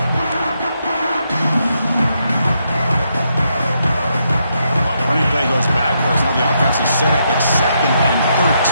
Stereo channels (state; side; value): inverted; both; correlation -0.79